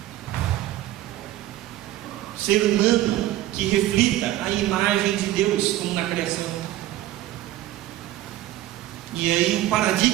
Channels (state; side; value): quieter; left; 14.6 dB